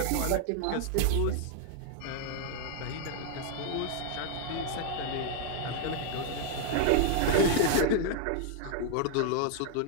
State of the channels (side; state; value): both; different; correlation 0.00